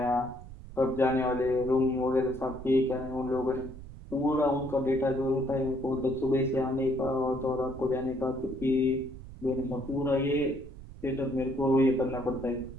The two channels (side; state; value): right; noise; rumble, 15 dB below the sound